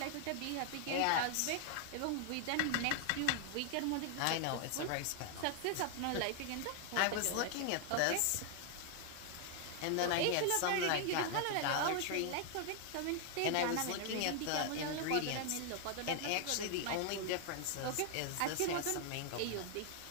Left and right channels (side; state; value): both; different; correlation 0.00